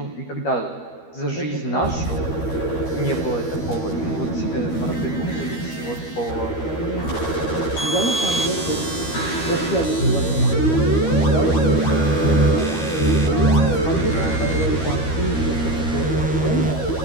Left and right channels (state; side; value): late; right; 13 ms